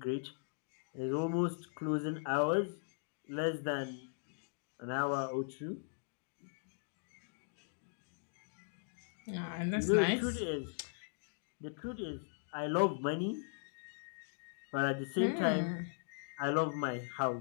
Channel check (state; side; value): silent; right; digital silence